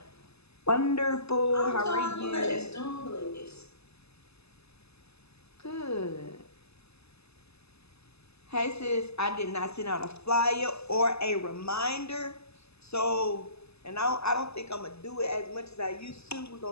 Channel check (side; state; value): right; late; 0.79 ms